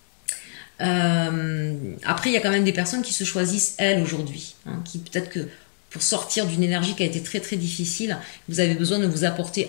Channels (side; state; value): right; silent; digital silence